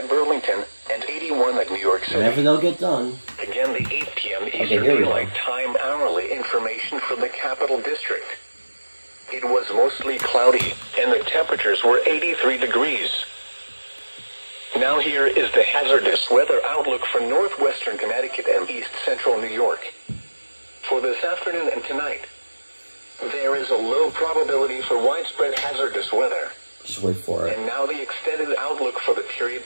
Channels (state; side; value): inverted; both; correlation -1.00